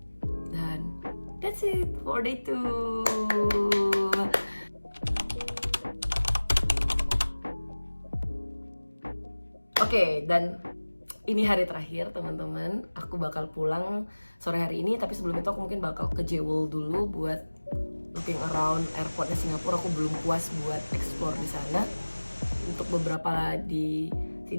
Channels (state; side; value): inverted; both; correlation -1.00